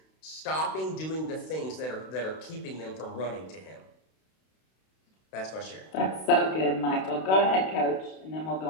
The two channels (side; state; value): right; late; 32 ms